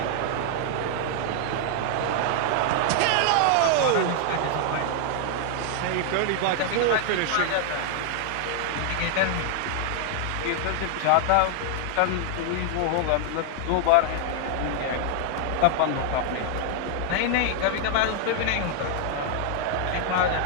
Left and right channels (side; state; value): both; different; correlation 0.00